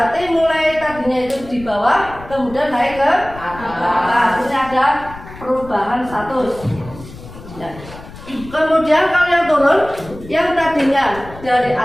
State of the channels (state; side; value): noise; left; rumble, 16 dB below the sound